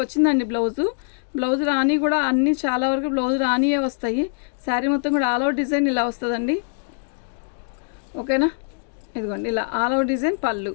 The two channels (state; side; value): silent; right; 61 dB below the other